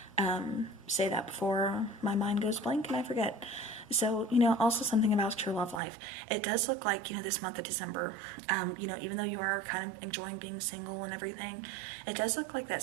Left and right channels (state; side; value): drops out; left; at 5.8 s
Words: say that before my mind goes blank and I forget. So, also something about your love life. It does look like, this month of December, even though you are kind of enjoying being single and everything, it does look like that